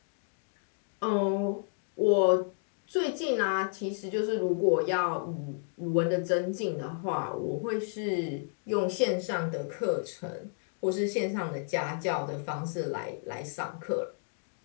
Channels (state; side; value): silent; right; digital silence